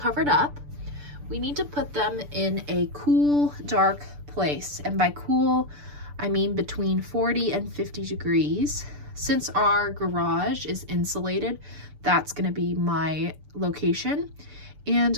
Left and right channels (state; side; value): late; left; 6.9 ms